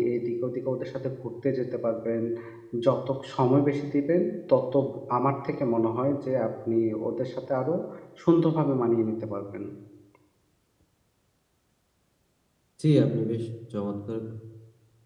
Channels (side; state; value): both; identical; correlation 1.00